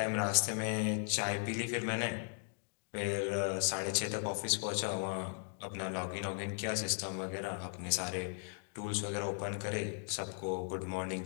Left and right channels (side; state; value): right; silent; 53 dB below the other